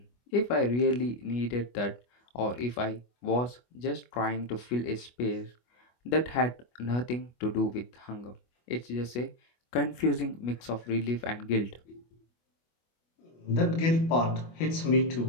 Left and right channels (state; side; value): late; right; 25 ms